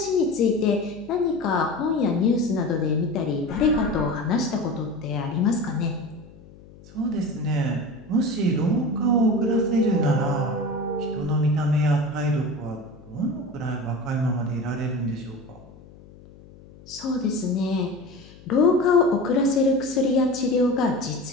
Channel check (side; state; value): left; noise; hum, 22 dB below the sound